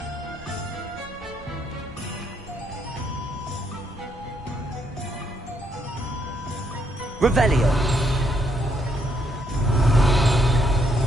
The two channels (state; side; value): normal; both; correlation 0.74